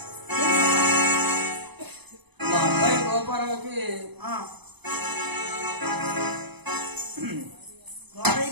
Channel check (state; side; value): late; left; 0.99 ms